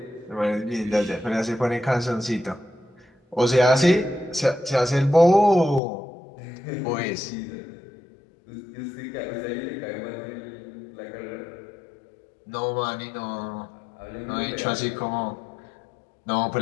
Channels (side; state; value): right; drops out; at 5.8 s